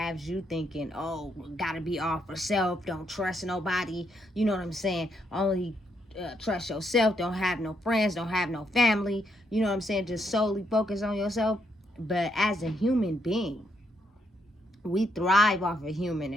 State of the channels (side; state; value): both; normal; correlation 0.76